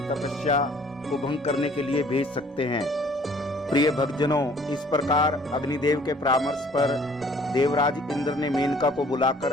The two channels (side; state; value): both; normal; correlation 0.56